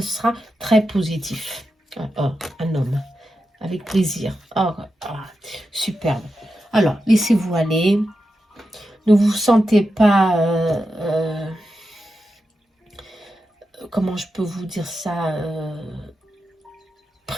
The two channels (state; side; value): normal; both; correlation 0.89